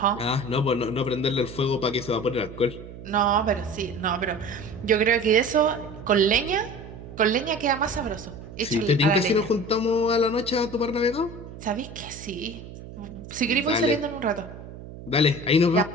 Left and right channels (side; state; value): right; noise; hum, 14 dB below the sound